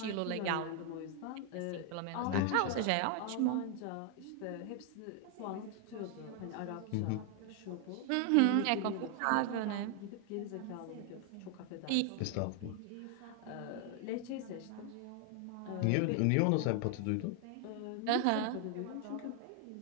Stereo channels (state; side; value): different; both; correlation 0.00